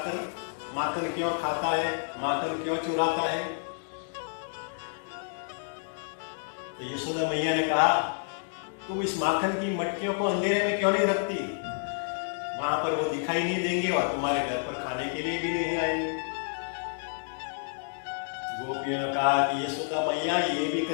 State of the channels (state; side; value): silent; right; digital silence